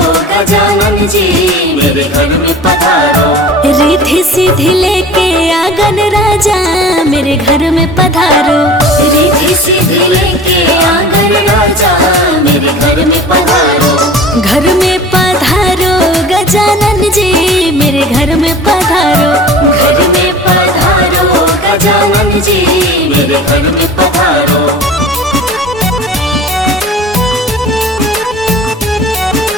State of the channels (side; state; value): both; normal; correlation 0.41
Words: गजानन जी मेरे घर में पधारो। रिद्धि सिद्धि लेके आंगन राजा मेरे घर में पधारो। रिद्धि सिद्धि लेके आंगन राजा मेरे घर में पधारो। घर में पधारो गजानन जी मेरे घर में पधारो। घर में पधारो गजानन जी मेरे घर में पधारो।